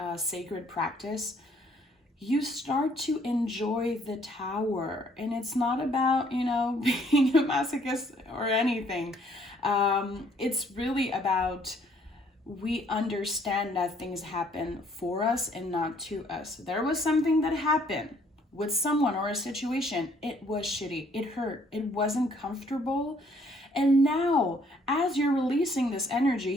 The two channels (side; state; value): both; normal; correlation 0.63